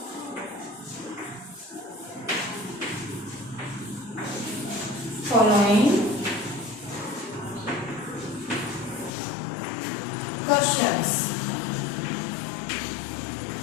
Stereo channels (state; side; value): drops out; right; at 9.1 s